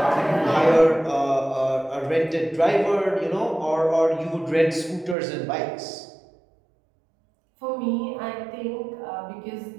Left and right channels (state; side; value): drops out; left; at 5.2 s